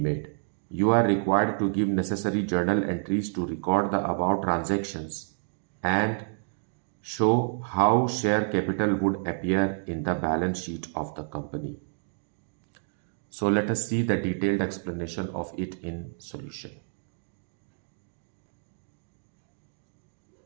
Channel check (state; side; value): silent; left; digital silence